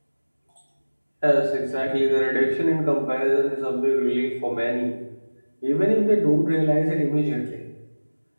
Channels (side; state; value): both; inverted; correlation -1.00